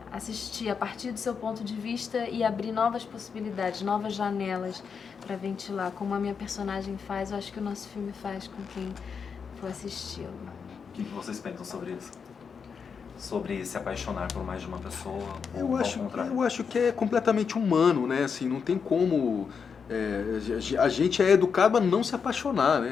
assistir a partir do seu ponto de vista e abrir novas possibilidades, novas janelas para ventilar. Como a minha personagem faz, eu acho que o nosso filme faz com quem for assisti-lo. O que vocês pensam sobre isso? Sobre se apaixonar por mais de uma pessoa, ou ao contrário? Eu acho que é completamente humano, né? Assim, não tem como... a gente é educado a não se apaixonar,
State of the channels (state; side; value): quieter; right; 6.1 dB